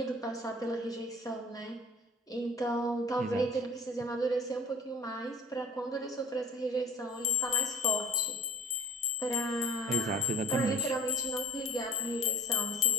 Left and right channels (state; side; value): normal; both; correlation 0.43